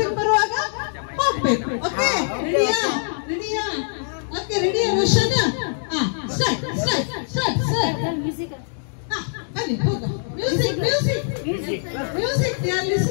ಬರುವಾಗ ಹೋಗ್ಬೇಕು. ಓಕೆ, ರೆಡಿಯಾ? ರೆಡಿಯಾ? ಓಕೆ, ರೆಡಿಯಾ Roshan? Start start start start. ಬನ್ನಿ ಹೋಗ. Music music music. They are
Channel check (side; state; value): right; silent; digital silence